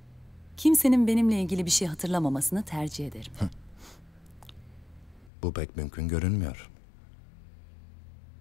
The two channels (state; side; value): drops out; right; at 5.3 s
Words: Kimsenin benimle ilgili bir şey hatırlamamasını tercih ederim. Bu pek mümkün görünmüyor.